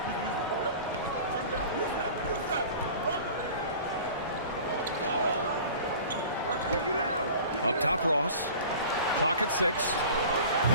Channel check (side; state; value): both; inverted; correlation -0.41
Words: Up top, Ross. Clock at 6.